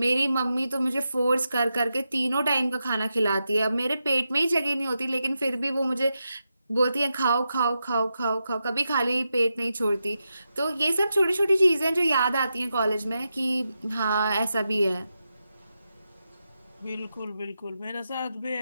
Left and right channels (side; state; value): both; inverted; correlation -0.88